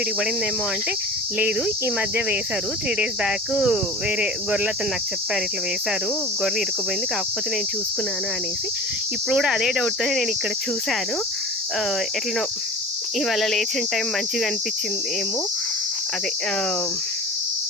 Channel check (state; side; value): normal; both; correlation 0.35